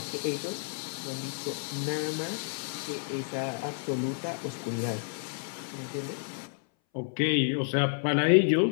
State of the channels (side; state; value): right; silent; 58 dB below the other